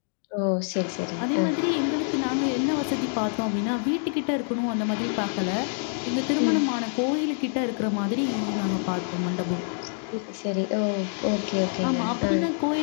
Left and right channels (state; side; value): silent; right; 55 dB below the other